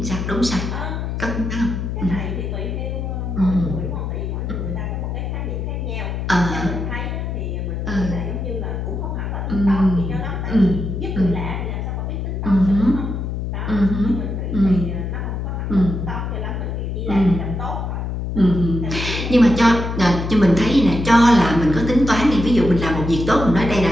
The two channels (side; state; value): left; noise; hum, 3 dB below the sound